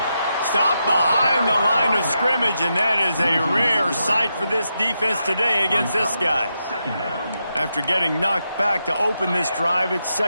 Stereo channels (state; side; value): inverted; both; correlation -0.85